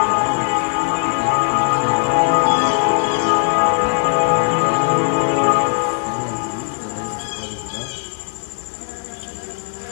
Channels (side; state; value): right; silent; digital silence